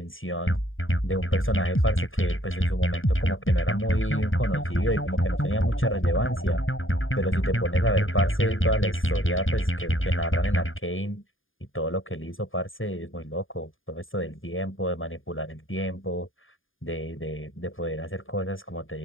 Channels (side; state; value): right; late; 0.59 ms